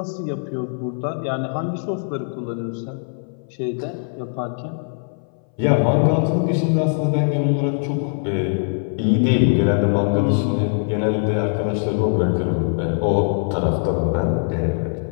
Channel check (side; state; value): right; silent; 61 dB below the other